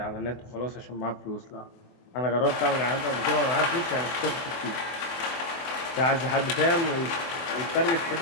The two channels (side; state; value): right; late; 24 ms